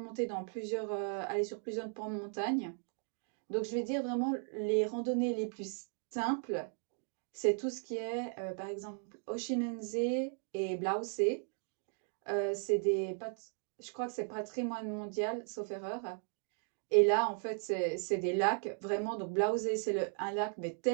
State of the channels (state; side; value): silent; left; 53 dB below the other